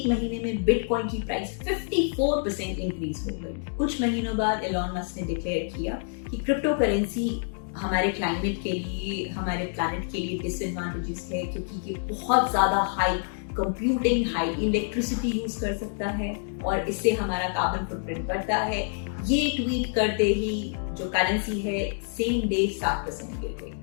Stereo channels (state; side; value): silent; right; digital silence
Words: महीने में बिटकॉइन की प्राइस 54% इंक्रीज हो गई। कुछ महीनों बाद इलॉन मस्क ने डिक्लेयर किया कि क्रिप्टो करेंसी हमारे क्लाइमेट के लिए, हमारे प्लैनेट के लिए डिसएडवांटेजेस है, क्योंकि ये बहुत ज्यादा high computing, high electricity use कर सकता है और इससे हमारा कार्बन फुटप्रिंट बढ़ता है। ये ट्वीट करते ही जो करेंसी है सेम डे 7% गिर गई।